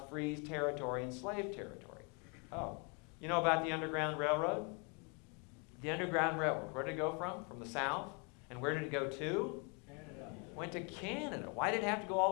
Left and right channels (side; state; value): right; quieter; 34.4 dB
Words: free territory and slave territory. Oh, you know about the Underground Railroad? The Underground Railroad, where did it go from? From the South. And where did it go to? Canada. Went to Canada. Why did it have to go all